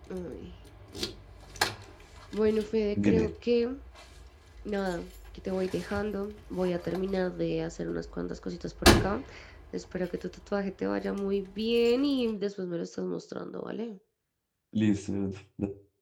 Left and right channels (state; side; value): identical; both; correlation 1.00